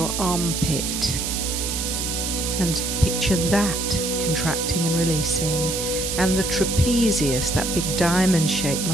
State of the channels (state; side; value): noise; right; hiss, 3 dB below the sound